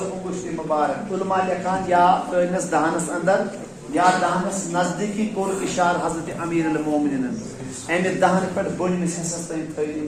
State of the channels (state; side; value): identical; both; correlation 1.00